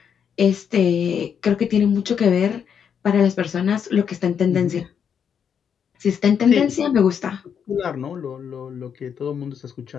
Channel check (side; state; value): right; quieter; 7.6 dB